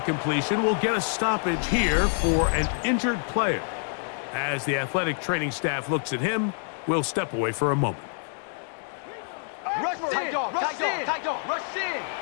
we'll get a stoppage here for an injured player. As the athletic training staff looks at him, we'll step away for a moment. Rush in! Rush in! Rush in!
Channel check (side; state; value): right; silent; 56 dB below the other